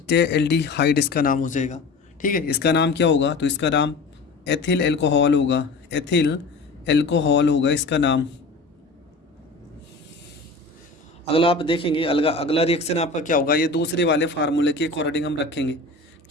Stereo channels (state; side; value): quieter; right; 3.5 dB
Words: इसका नाम हो जाएगा, ठीक है। इसका नाम क्या होगा, तो इसका नाम एथिल एल्कोहल होगा, एथिल एल्कोहल होगा इसका नाम। अगला आप देखेंगे, अगला रिएक्शन आपका क्या होगा, ये दूसरे वाले फार्मूले के अकॉर्डिंग हम रखेंगे।